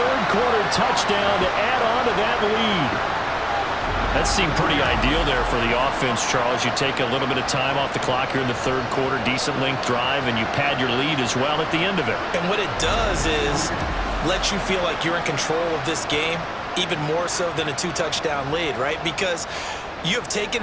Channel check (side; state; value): both; identical; correlation 1.00